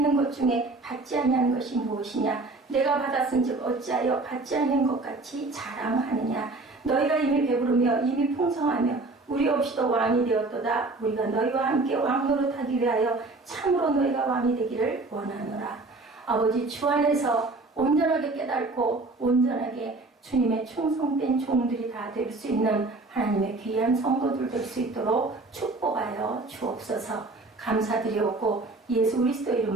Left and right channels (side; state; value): left; quieter; 3.3 dB